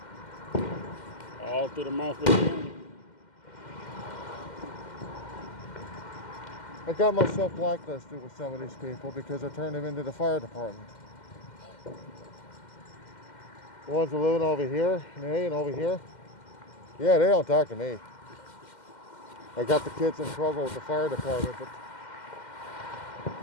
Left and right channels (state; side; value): late; right; 2.1 ms